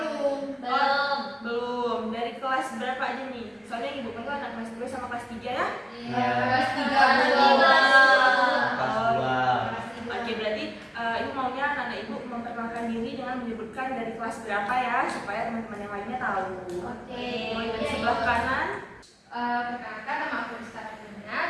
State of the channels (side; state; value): both; identical; correlation 1.00